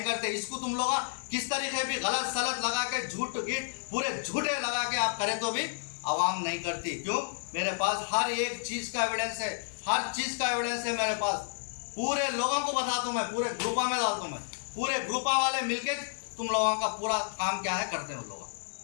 करते। इसको तुम लोग किस तरीके भी गलत सलत लगा के झूठ गीट पूरे झूठे लगा के आप करें तो भी आवाम नहीं करती। क्यों? मेरे पास हर एक चीज का एविडेंस है, हर चीज का एविडेंस है मेरे पास। पूरे लोगों को बताता हूँ मैं, पूरे ग्रुपा में डालता हूँ मैं, पूरे ग्रुपा वाले मिलके तुम लोगों का पूरा काम क्या है करते हैं उन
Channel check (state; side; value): silent; right; digital silence